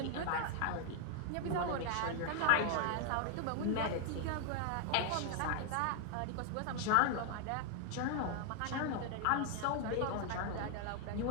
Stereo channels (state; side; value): different; both; correlation 0.00